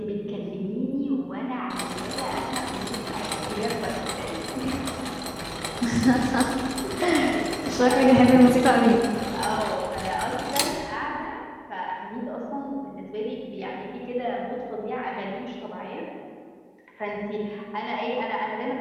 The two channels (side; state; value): both; identical; correlation 1.00